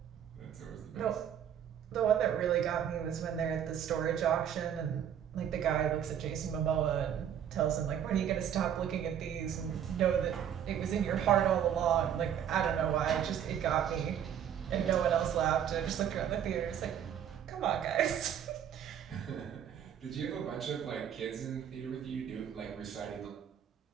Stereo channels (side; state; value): left; quieter; 9.3 dB